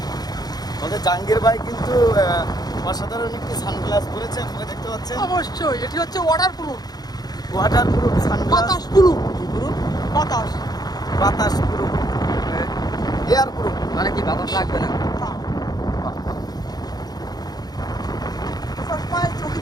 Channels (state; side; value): late; right; 0.19 ms